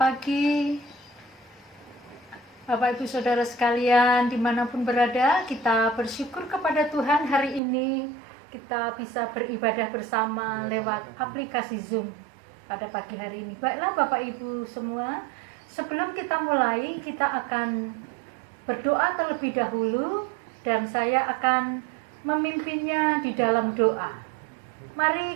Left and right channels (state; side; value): drops out; left; at 7.6 s